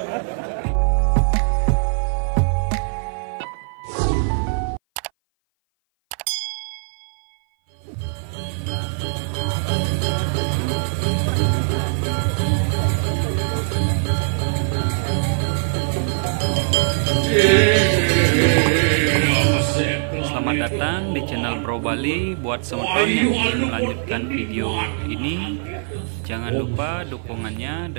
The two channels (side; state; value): left; silent; 58 dB below the other